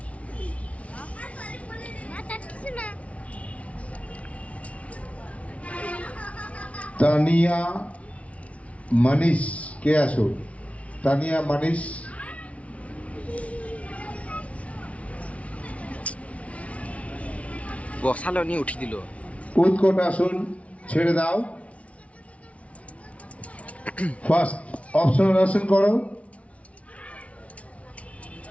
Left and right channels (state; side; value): late; right; 0.064 ms